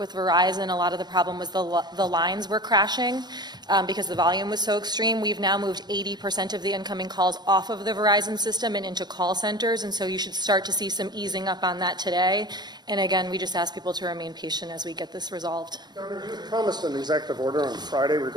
Verizon. A lot of the problem was the lines were crashing because the volume was so extreme. We've now moved 80% of the incoming calls off of the Verizon system and into call centers, and so you should start to see some easing up on that today. And again, we just ask people to remain patient as we get this resolved. Governor, you promised an executive order on Friday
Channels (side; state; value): left; late; 0.20 ms